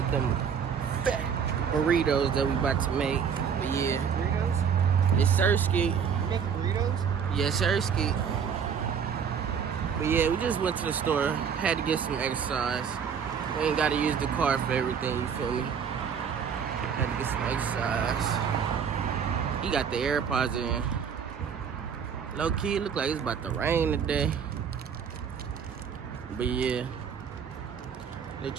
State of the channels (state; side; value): quieter; left; 7.1 dB